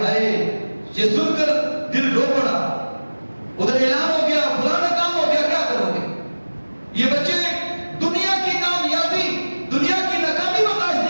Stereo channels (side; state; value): both; inverted; correlation -1.00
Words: ہائے، یہ سن کر دل رو پڑا۔ ادھر اعلان ہو گیا فلانا کام ہو گیا، کیا کرو گے؟ یہ بچے دنیا کی کامیابی، دنیا کی ناکامی برداشت